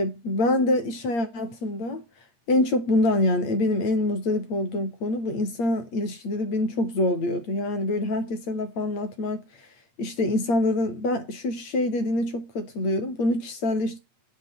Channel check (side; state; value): right; late; 8.6 ms